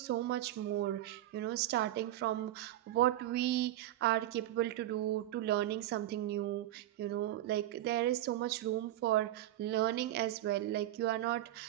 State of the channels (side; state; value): left; quieter; 13.9 dB